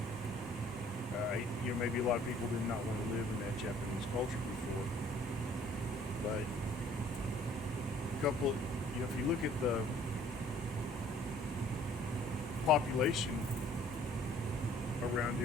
Maybe a lot of people did not want to live in that Japanese culture before, but if you look at the population around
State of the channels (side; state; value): both; normal; correlation 0.57